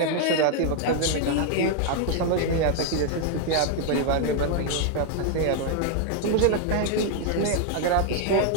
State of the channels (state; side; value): different; both; correlation 0.00